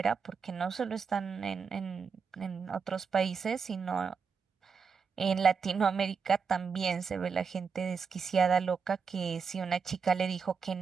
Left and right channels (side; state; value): left; quieter; 5.8 dB